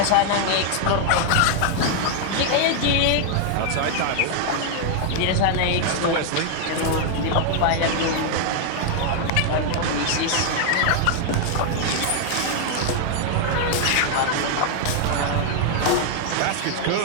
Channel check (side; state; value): both; different; correlation 0.00